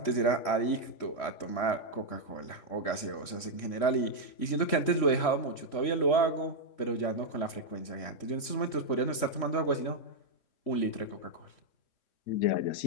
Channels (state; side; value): late; right; 3.0 ms